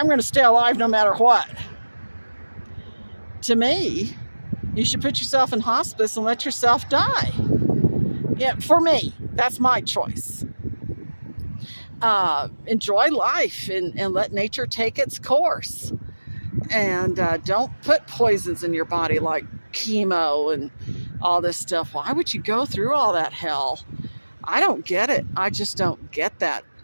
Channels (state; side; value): inverted; both; correlation -1.00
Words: going to stay alive no matter what. To me, you should put yourself in hospice and let yourself die. Yeah, for me, that's my choice. Enjoy life and let nature take its course. And don't put poisons in your body like chemo and all this stuff. Why would you go through all that hell? I don't get it. I just don't get that